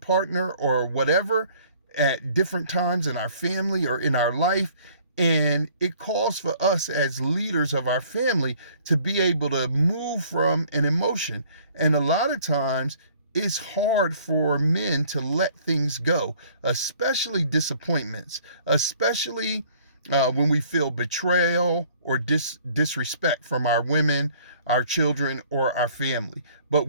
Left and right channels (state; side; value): inverted; both; correlation -0.57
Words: or whatever at different times in our family or in our life. And it calls for us as leaders of our family to be able to move from an emotion. And a lot of times it's hard for men to let things go, especially disappointments, especially when we feel betrayal or disrespect from our women, our children, or our family. But